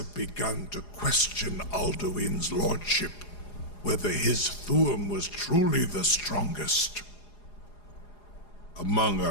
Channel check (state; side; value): late; right; 4.8 ms